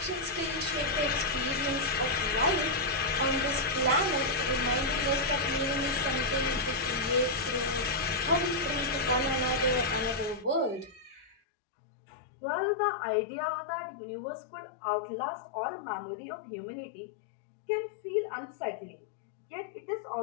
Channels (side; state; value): right; drops out; at 11.4 s